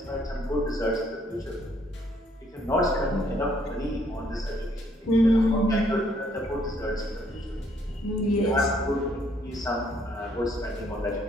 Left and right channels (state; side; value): normal; both; correlation 0.67